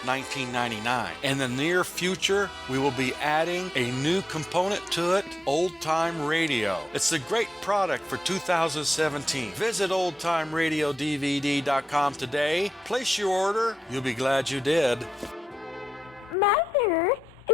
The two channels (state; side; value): normal; both; correlation 0.88